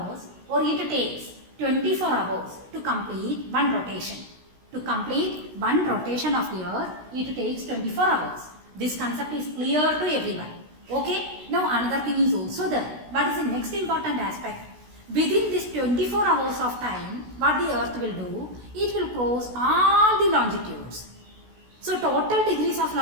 or it takes 24 hours to complete one rotation. To complete one rotation of the Earth, it takes 24 hours. This concept is clear to everyone. Okay? Now another thing is also there. What is the next important aspect? Within this 24 hours of time, what the Earth will do? It will cross all the longitudes. So total degrees of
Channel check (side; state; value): left; late; 16 ms